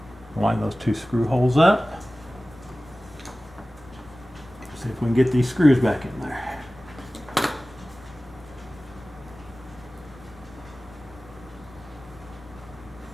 line those two screw holes up. See if we can get these screws back in there.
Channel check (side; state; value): both; normal; correlation 0.97